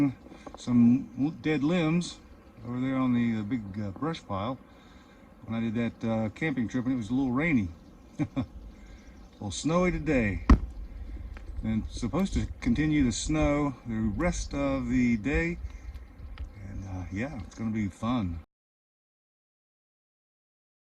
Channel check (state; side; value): identical; both; correlation 1.00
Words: some dead limbs over there on the big brush pile when I did that camping trip, and it was a little rainy. A little snowy today. And it's supposed to continue to snow the rest of the day. And yeah, it's going to be fun.